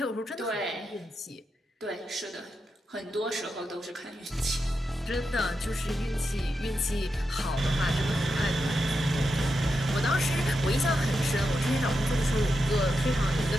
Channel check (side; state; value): both; normal; correlation 0.87